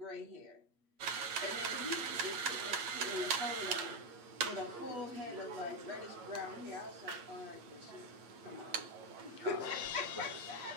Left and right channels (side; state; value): left; late; 8.5 ms